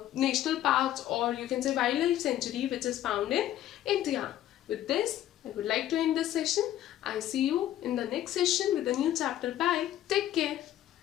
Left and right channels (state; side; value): quieter; right; 12.5 dB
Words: national parks, or you can say wildlife sanctuary, which is found in India. With this, I would like to end this session. I see you in the next session with a new chapter. Bye. Take care.